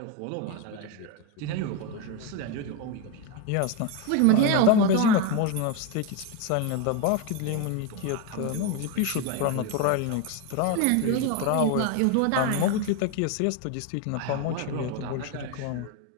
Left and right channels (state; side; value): different; both; correlation 0.02